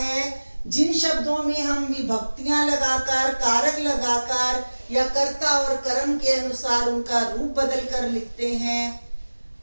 जिन शब्दों में हम विभक्तियां लगाकर, कारक लगाकर या कर्ता और कर्म के अनुसार उनका रूप बदल कर लिखते हैं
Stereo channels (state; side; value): inverted; both; correlation -1.00